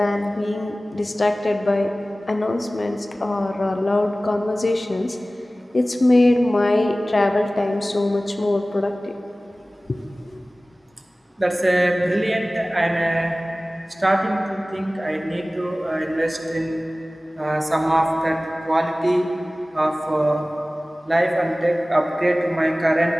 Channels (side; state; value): both; normal; correlation 0.97